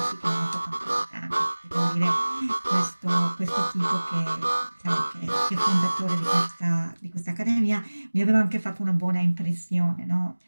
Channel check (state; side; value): inverted; both; correlation -1.00